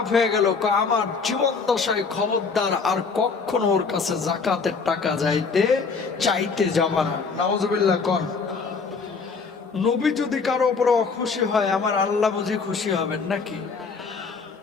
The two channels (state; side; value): quieter; right; 4.9 dB